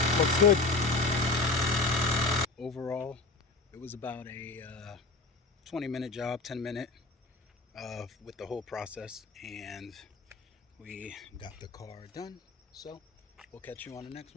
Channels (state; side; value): quieter; right; 3.6 dB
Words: Looks good. Overall, it was about a 20-minute job, 10-minute with the whole process, and we got the car done. So we'll catch you on the next